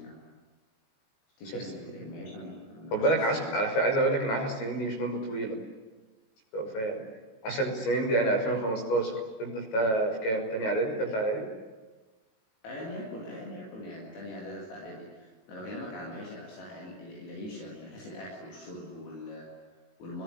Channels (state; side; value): late; right; 18 ms